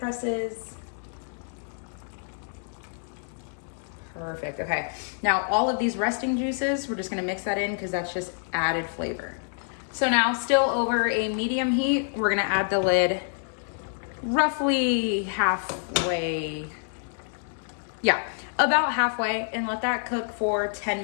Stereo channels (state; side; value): silent; right; digital silence